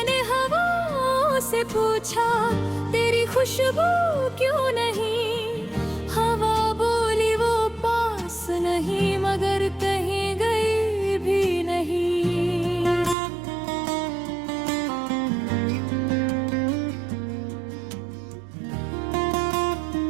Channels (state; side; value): drops out; left; at 13.2 s